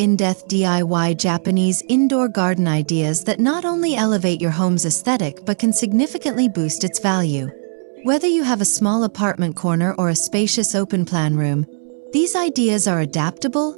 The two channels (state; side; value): silent; left; 67 dB below the other